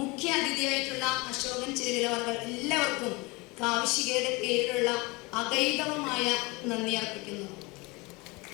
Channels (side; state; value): right; quieter; 25.2 dB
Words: അതിഥിയായിട്ടുള്ള അശോകൻ ചിരവിലവർകൾ, എല്ലാവർക്കും കാവ്യശികയുടെ പേരിലുള്ള അഗൈതവമായ നന്ദി അർപ്പിക്കുന്നു.